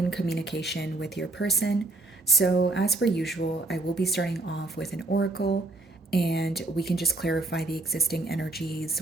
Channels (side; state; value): left; quieter; 3.0 dB